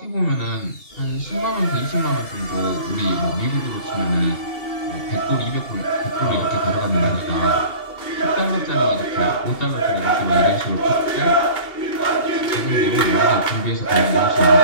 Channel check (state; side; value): late; right; 2.8 ms